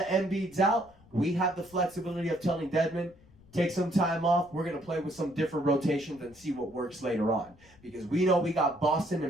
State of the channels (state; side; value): noise; left; rumble, 26 dB below the sound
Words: Embiid's out, we have the flexibility of telling Dedmon, take some time off. We're going to play with some different rotations and see what works later on. Because we know we got Boston